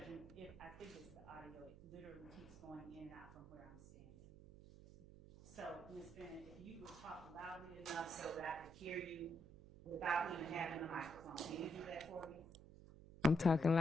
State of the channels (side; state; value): right; noise; hum, 17 dB below the sound